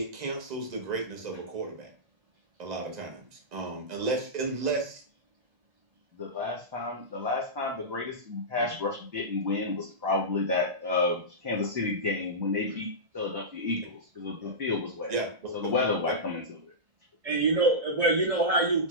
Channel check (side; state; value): left; late; 1.9 ms